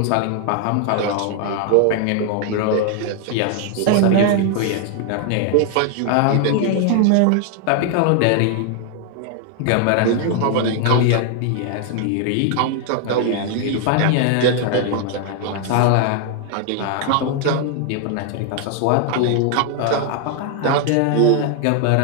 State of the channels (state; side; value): different; both; correlation 0.00